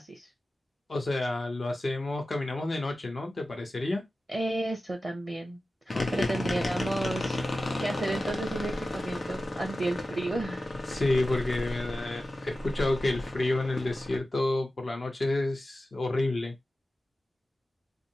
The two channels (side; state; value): both; normal; correlation 0.94